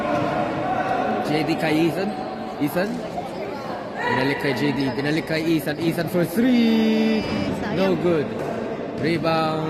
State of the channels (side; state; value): both; identical; correlation 1.00